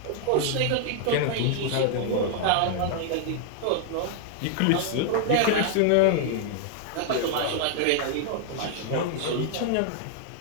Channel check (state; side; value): different; both; correlation 0.00